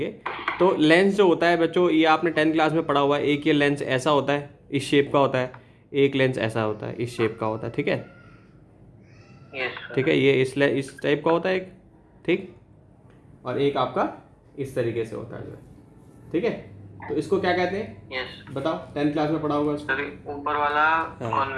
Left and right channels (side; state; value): both; identical; correlation 1.00